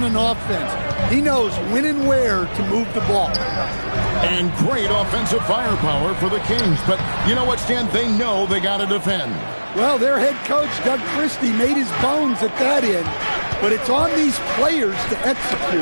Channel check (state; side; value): inverted; both; correlation -1.00